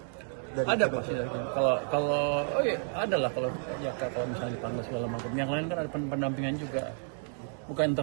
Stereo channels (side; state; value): left; silent; 57 dB below the other